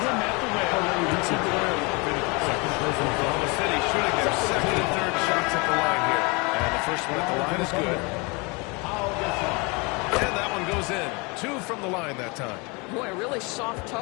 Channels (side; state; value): right; quieter; 29.0 dB